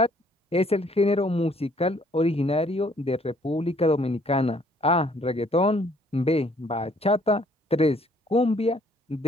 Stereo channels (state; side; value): normal; both; correlation 0.62